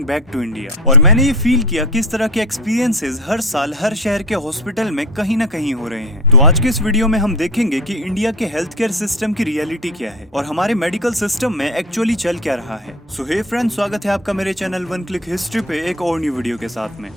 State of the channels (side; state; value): both; normal; correlation 0.31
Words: back to India. और मैंने ये फील किया कि इस तरह के एक्सपीरियंसेस हर साल हर शहर के हॉस्पिटल में कहीं ना कहीं हो रहे हैं। तो आज के इस वीडियो में हम देखेंगे कि इंडिया के हेल्थ केयर सिस्टम की रियलिटी क्या है और हमारे मेडिकल सिस्टम में एक्चुअली चल क्या रहा है। सो हे फ्रेंड्स, स्वागत है आपका मेरे चैनल वन क्लिक हिस्ट्री पे एक और न्यू वीडियो के साथ में।